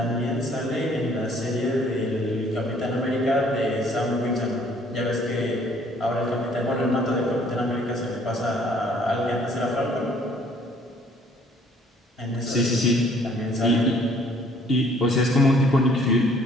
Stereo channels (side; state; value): both; normal; correlation 0.59